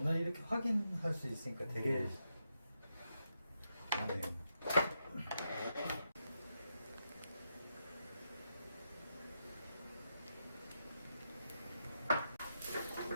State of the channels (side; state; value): both; inverted; correlation -0.85